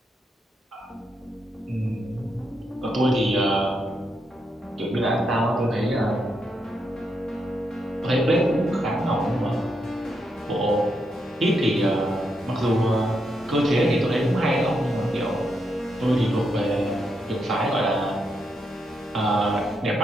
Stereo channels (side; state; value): both; normal; correlation 0.81